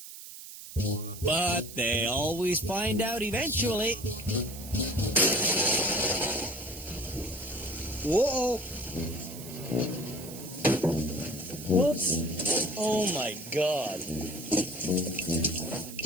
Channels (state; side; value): noise; right; hiss, 13 dB below the sound